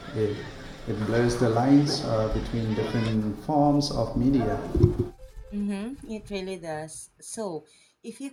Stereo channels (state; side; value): identical; both; correlation 1.00